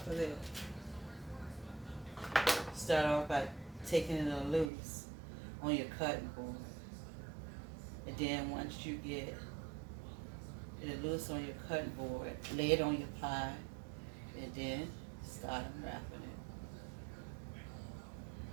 of there. Start off by taking it loose. on your cutting board. And then once you get it loose on your cutting board, lay it on your pie, and then start unwrapping it.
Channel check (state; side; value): drops out; left; at 4.7 s